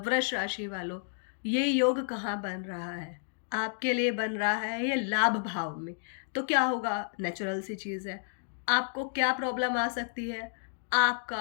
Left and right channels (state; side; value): silent; right; digital silence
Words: राशि वालों, ये योग कहाँ बन रहा है? आपके लिए बन रहा है ये लाभ भाव में। तो क्या होगा, नेचुरल सी चीज़ है। आपको क्या प्रॉब्लम आ सकती है?